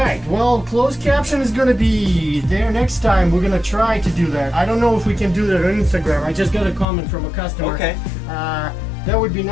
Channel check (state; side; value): drops out; right; at 6.9 s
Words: Well, closed caption is going to be there next time. We're going to try to do that. I don't know if we can do that on Instagram. I just got a comment from a customer. Okay. That would be